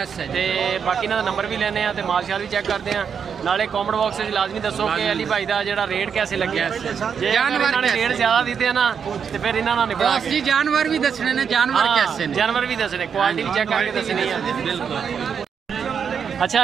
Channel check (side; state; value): left; quieter; 7.0 dB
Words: ते बाकी ना नंबर भी लेने हैं ते माल शाल भी चेक करते हैं। नाले कॉमेंट बॉक्स में लाजमी दसो कि अली भाई का जो रेट कैसे लगे। जे जानवर ने रेट ज्यादा दिते ना तो फिर इन्होंने नहीं बना जी जानवर भी दसने ने, जानवर कैसे ने, जानवर भी दसने, क्वालिटी भी चेक करके दसनी है। बिल्कुल। अच्छा